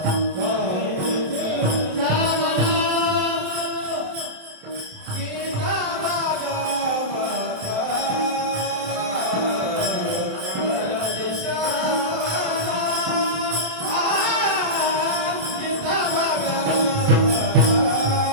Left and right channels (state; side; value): late; left; 27 ms